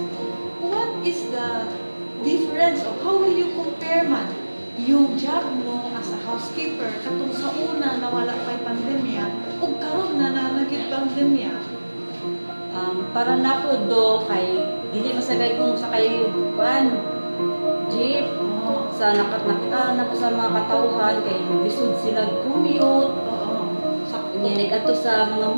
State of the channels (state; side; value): inverted; both; correlation -1.00